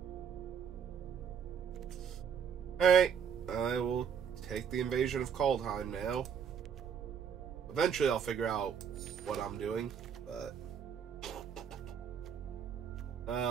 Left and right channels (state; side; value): quieter; left; 7.6 dB